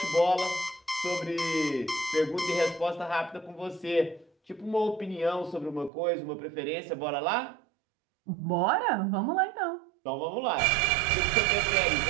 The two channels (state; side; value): drops out; left; at 5.9 s